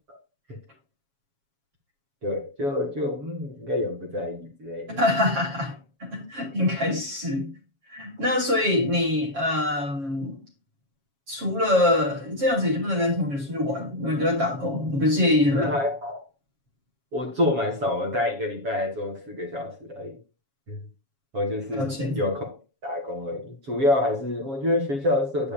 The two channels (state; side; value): late; left; 7.3 ms